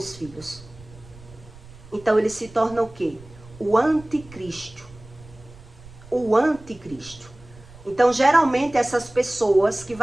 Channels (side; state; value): right; noise; rumble, 21 dB below the sound